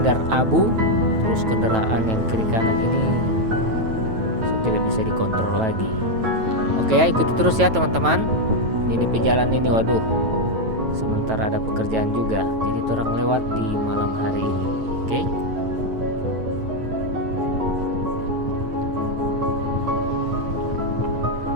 abu. Terus kendaraan yang kiri kanan ini tidak bisa dikontrol lagi. Oke ya, ikuti terus ya teman-teman. Ini pejalan ini, waduh, sementara ada pekerjaan juga, jadi orang lewat di malam hari ini. Oke.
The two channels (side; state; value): left; late; 9.1 ms